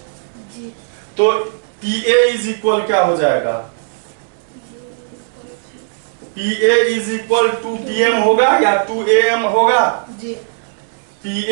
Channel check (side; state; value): left; silent; digital silence